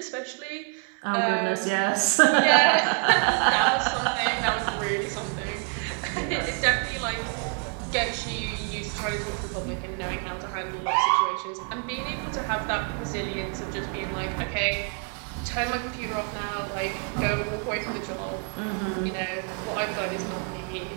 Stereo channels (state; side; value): quieter; left; 36.4 dB